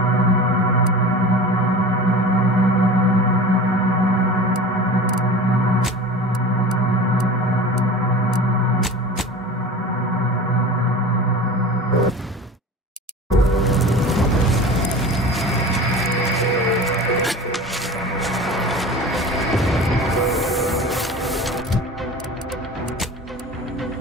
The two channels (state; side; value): normal; both; correlation 0.35